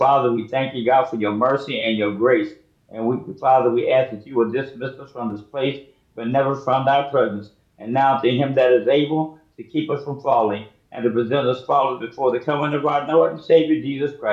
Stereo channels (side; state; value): both; identical; correlation 1.00